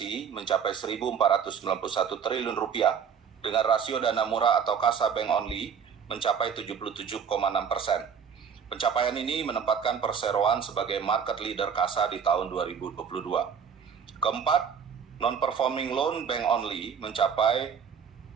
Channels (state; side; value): quieter; left; 7.1 dB